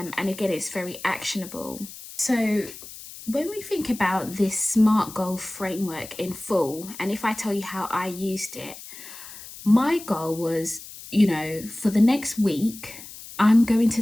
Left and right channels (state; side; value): noise; left; hiss, 15 dB below the sound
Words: again, it's very actionable. So when we think about this SMART goal framework in full, and if I tell you how I used it, my goal was, for the next week, I'm going to